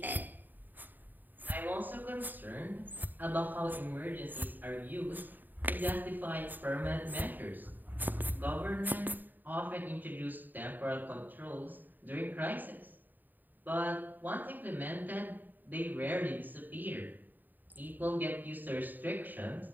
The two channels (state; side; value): late; left; 0.088 ms